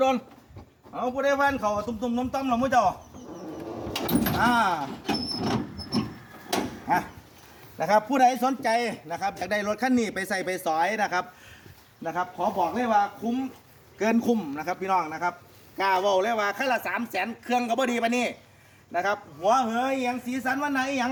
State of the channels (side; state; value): both; identical; correlation 1.00